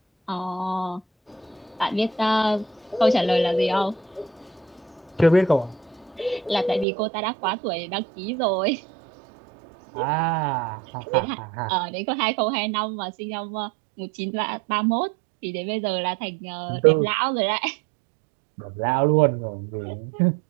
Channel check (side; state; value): left; drops out; at 6.9 s